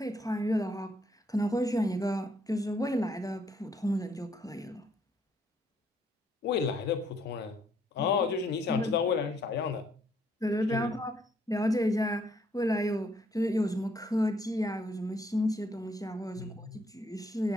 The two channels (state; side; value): normal; both; correlation 0.69